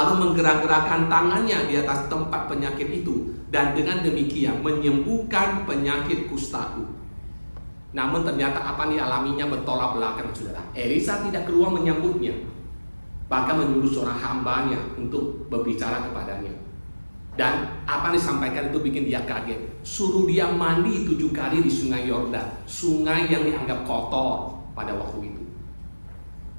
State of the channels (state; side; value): inverted; both; correlation -1.00